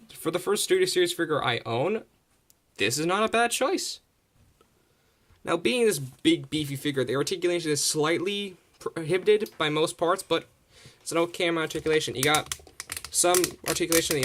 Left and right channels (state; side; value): identical; both; correlation 1.00